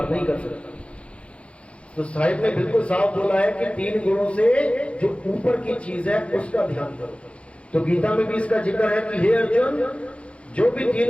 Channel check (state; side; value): late; right; 0.061 ms